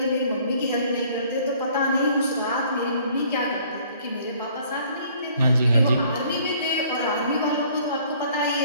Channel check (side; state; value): both; inverted; correlation -0.58